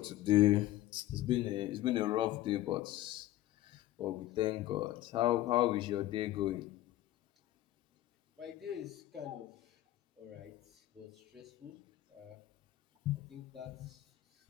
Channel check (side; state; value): right; quieter; 15.1 dB